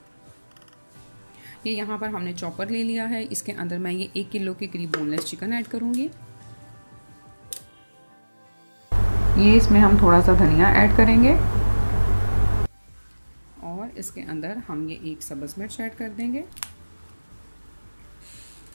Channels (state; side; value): inverted; both; correlation -1.00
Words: ये यहाँ पर हमने चॉपर ले लिया है। इसके अंदर मैं ये 1 किलो के करीब बोनलेस चिकन ऐड करूँगी। ये इसमें हम थोड़ा सा धनिया ऐड करेंगे और इसके अंदर हम ये 1 सब्ज़ मिर्च ऐड कर देंगे।